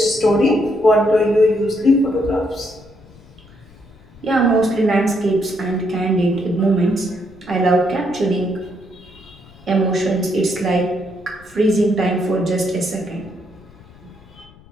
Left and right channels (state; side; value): noise; left; rumble, 24 dB below the sound